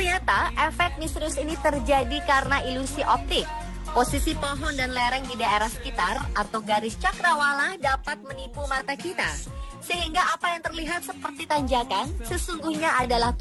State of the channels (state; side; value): identical; both; correlation 1.00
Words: efek misterius ini terjadi karena ilusi optik. Posisi pohon dan lereng di daerah sekitar atau garis cakrawala dapat menipu mata kita. Sehingga apa yang terlihat seperti tanjakan sesungguhnya adalah